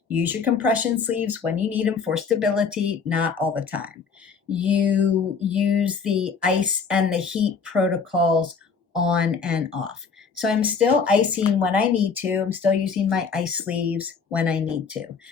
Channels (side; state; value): right; quieter; 5.5 dB